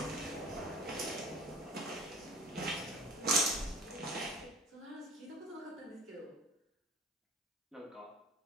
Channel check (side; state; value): both; normal; correlation 0.41